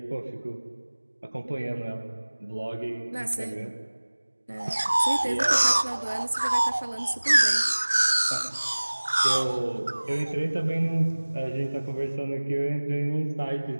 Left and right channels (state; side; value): inverted; both; correlation -1.00